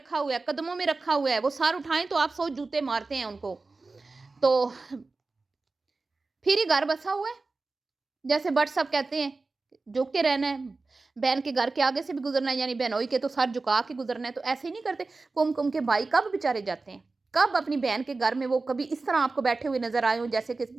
हुआ है, कदमों में रखा हुआ है, वो सर उठाएं तो आप 100 जूते मारते हैं उनको। तो फिर ही घर बसा हुआ है, जैसे भट्ट साहब कहते हैं, झुक के रहना है, बहन के घर के आगे से भी गुजरना है, यानी बहनोई के तो सर झुका के गुजरना है। तो ऐसे ही नहीं करते। कुमकुम के भाई कब बेचारे जाते हैं, कब अपनी बहन के घर में वो कभी इस तरह आपको बैठे हुए नजर आए हो जैसे कि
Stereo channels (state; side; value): quieter; left; 3.7 dB